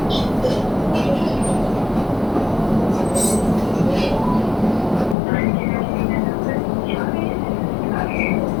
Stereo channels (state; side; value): drops out; right; at 5.2 s